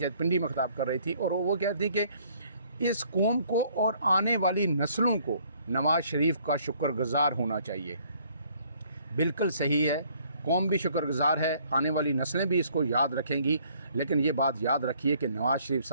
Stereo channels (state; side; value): inverted; both; correlation -0.62